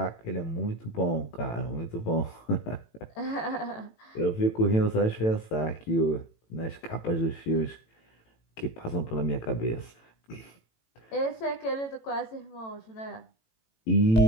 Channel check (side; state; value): right; late; 18 ms